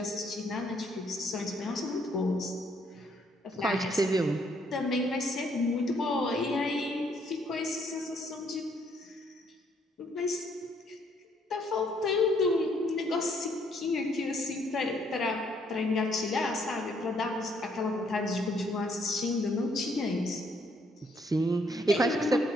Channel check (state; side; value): normal; both; correlation 0.69